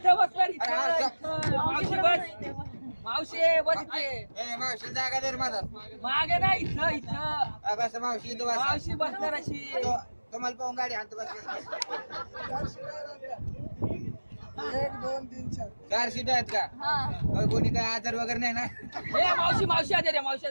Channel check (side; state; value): both; inverted; correlation -1.00